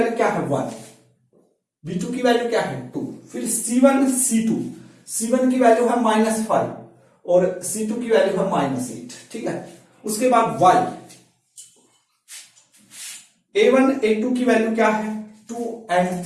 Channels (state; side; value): identical; both; correlation 1.00